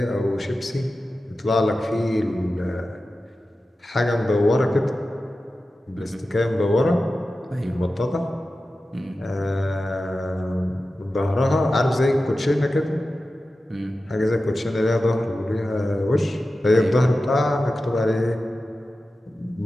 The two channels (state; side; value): normal; both; correlation 0.94